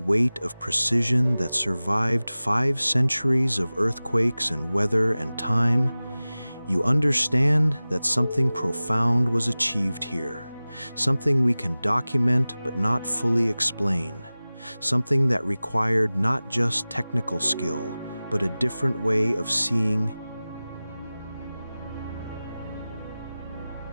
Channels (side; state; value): both; inverted; correlation -0.98